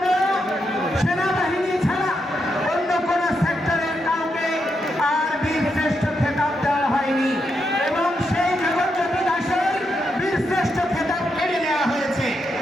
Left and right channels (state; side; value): normal; both; correlation 0.82